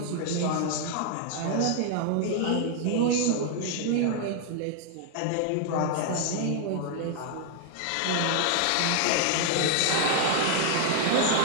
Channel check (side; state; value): both; different; correlation 0.00